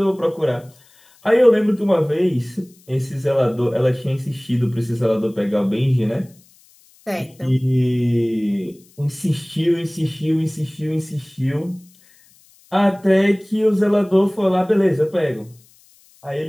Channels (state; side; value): noise; left; hiss, 30 dB below the sound